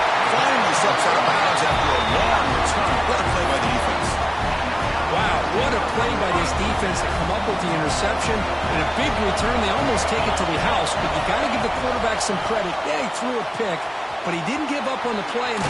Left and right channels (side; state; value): both; identical; correlation 1.00